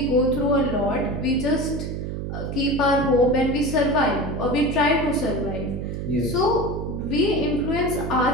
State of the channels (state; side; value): noise; right; hum, 5 dB below the sound